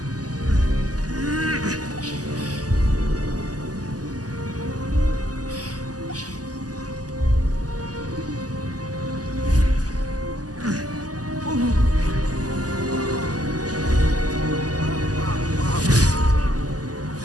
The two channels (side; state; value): left; late; 0.67 ms